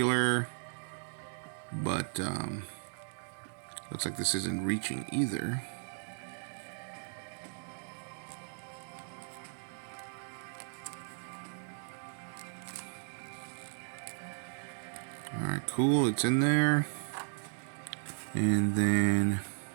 but looks like this isn't reaching either. Alright, cool, it's in there. And then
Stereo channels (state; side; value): silent; left; digital silence